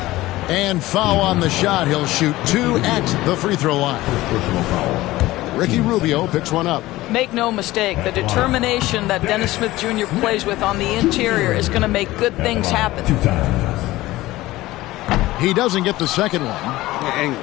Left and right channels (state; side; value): quieter; right; 17.6 dB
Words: And foul on the shot. He'll shoot 2 at the free throw line. Ricky Rubio picks one up. Make no mistake, the determination that Dennis Smith Jr. plays with on the interior is going to make good things happen. He doesn't get the second one.